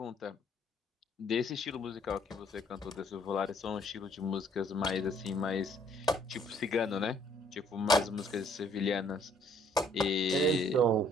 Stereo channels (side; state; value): both; normal; correlation 0.63